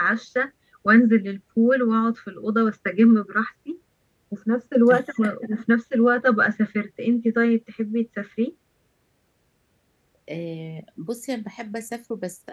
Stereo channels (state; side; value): identical; both; correlation 1.00